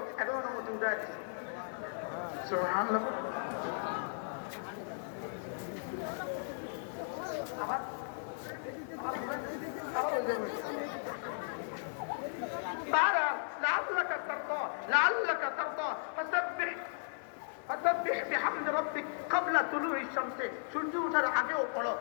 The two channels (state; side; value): silent; right; digital silence